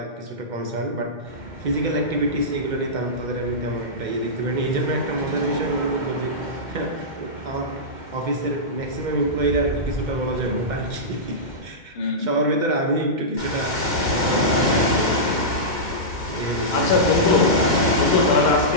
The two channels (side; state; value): left; late; 2.1 ms